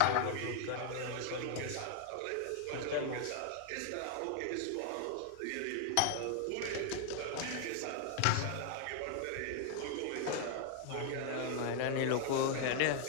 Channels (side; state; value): both; different; correlation 0.00